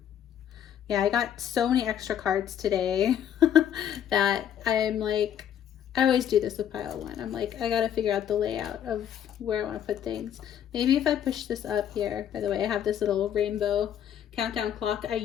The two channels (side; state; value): right; quieter; 9.7 dB